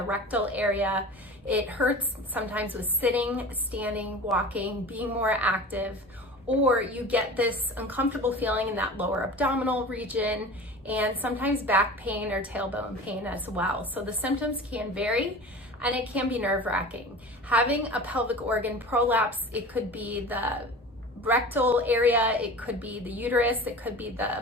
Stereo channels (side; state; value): both; normal; correlation 0.36